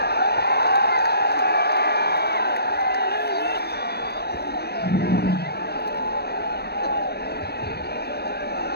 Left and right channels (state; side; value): late; right; 0.47 ms